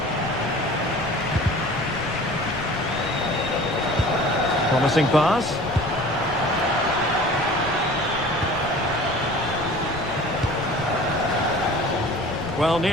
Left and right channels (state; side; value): noise; left; rumble, 15 dB below the sound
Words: Promising pass. Well,